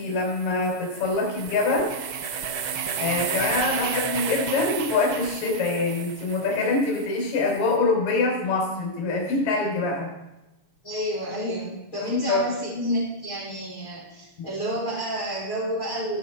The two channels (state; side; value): late; right; 6.3 ms